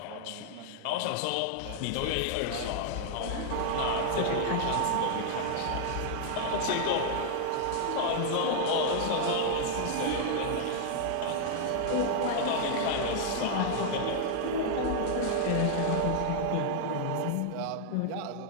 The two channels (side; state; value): both; different; correlation -0.01